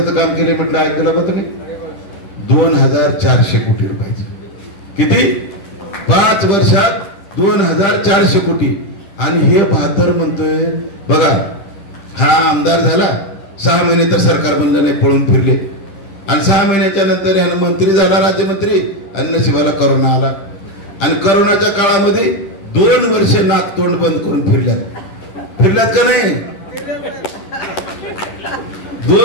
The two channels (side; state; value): right; late; 10 ms